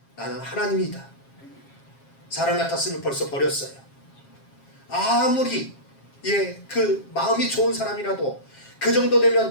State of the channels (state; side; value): late; right; 7.4 ms